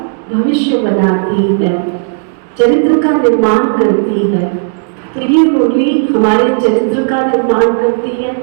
भविष्य बनाती है, चरित्र का निर्माण करती है। तो ये मुरली हमारे चरित्र का निर्माण करती है,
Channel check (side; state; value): left; silent; digital silence